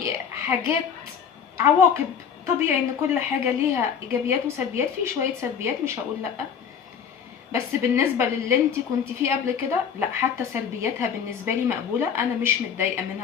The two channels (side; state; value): right; quieter; 7.4 dB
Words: حاجات عواقب، طبيعي ان كل حاجه ليها ايجابيات وسلبيات، في شويه سلبيات مش هقول لا، بس بالنسبه للي انت كنت فيه قبل كده لا، حتى سلبياتها بالنسبه لي مقبوله، انا مش متضايقه